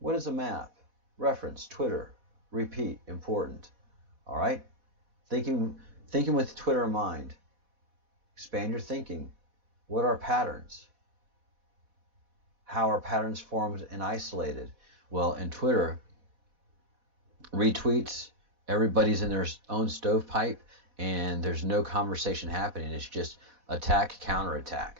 is a map? reference, Twitter, repeat, important. All right? Thinking with Twitter in mind. Expand your thinking. What are patterns? How are patterns formed and isolated? Well, in Twitter, retweets, everybody's in their own stovepipe, and there's no conversation happening. It's just attack,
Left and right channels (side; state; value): left; late; 4.1 ms